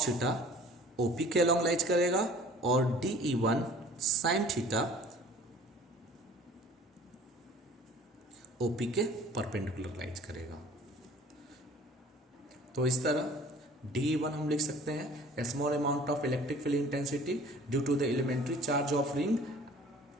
theta OP के अलॉन्ग लाइज करेगा और DE1 sin थीटा OP के परपेंडिकुलर लाइज करेगा। तो इस तरह DE1 हम लिख सकते हैं small amount of electric field intensity due to the elementary charge of ring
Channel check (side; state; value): both; normal; correlation 0.49